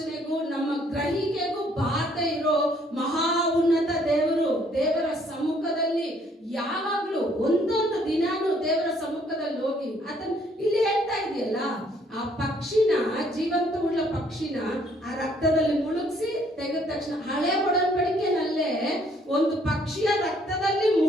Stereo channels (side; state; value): both; normal; correlation 0.65